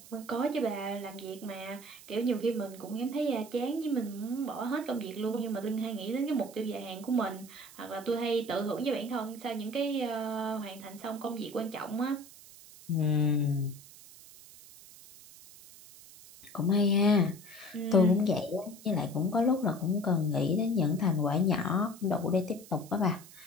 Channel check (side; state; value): right; noise; hiss, 19 dB below the sound